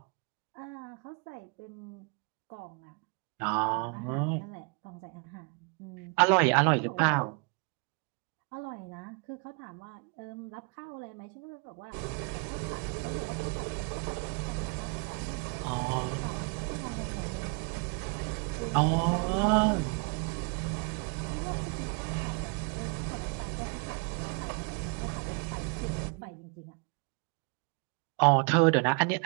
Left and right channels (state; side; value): quieter; left; 34.6 dB